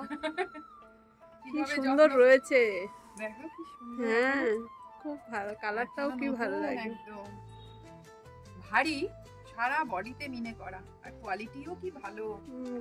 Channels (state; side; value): identical; both; correlation 1.00